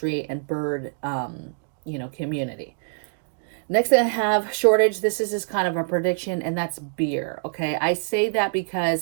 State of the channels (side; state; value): left; silent; digital silence